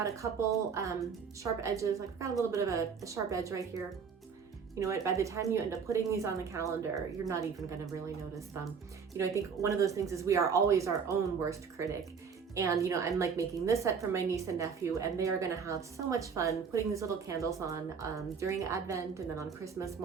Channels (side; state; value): left; quieter; 6.3 dB